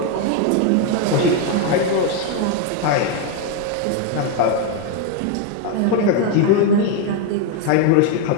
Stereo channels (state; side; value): different; both; correlation 0.01